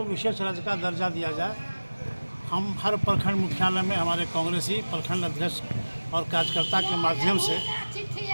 विशेष राज्य का दर्जा दिया जाए। हम हर प्रखंड मुख्यालय में हमारे कांग्रेसी प्रखंड अध्यक्ष और कार्यकर्ता के माध्यम से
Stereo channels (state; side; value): inverted; both; correlation -1.00